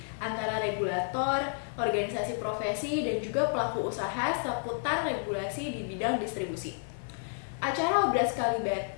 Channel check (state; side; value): silent; right; 57 dB below the other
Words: antara regulator, organisasi profesi, dan juga pelaku usaha seputar regulasi di bidang distribusi. Acara Obras